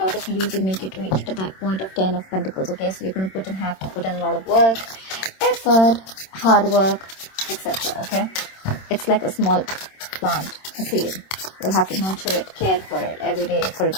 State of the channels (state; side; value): late; right; 26 ms